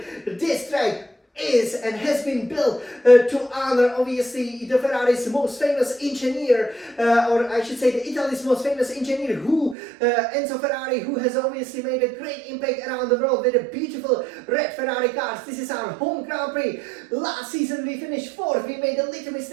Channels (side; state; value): left; drops out; at 9.8 s